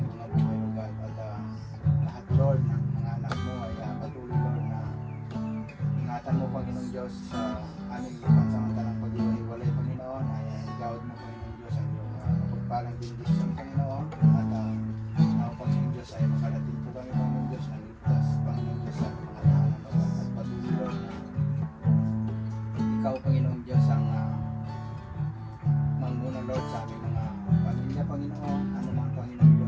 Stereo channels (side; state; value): both; identical; correlation 1.00